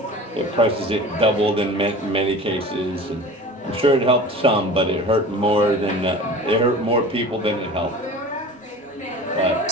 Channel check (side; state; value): both; normal; correlation 0.38